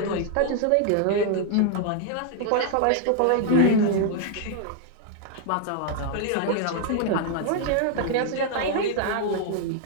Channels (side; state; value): both; different; correlation 0.00